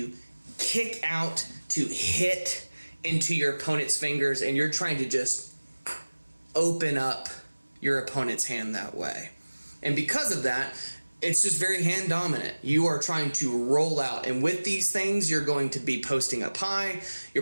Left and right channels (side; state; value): both; inverted; correlation -1.00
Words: kick out to hit into your opponent's fingers, and you're trying to just open up your opponent's hand that way. And because of that, it's just very hand dominant. You are trying to roll out, and with these things, you're going to be posting up high.